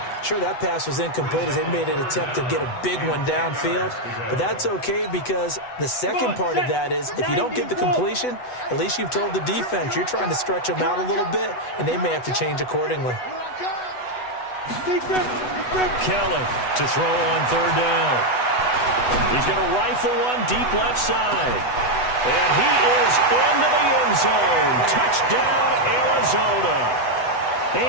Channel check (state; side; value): late; right; 8.1 ms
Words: Sure, that pass was incomplete as they made an attempt to get a big one downfield, but that's okay because the second part of that is if you don't get the completion, at least you've told the defense you're trying to stretch them out a little bit, and they may have to change accordingly. Kelly to throw on third down. He's going to rifle one deep left side. And he is into the end zone. Touchdown, Arizona.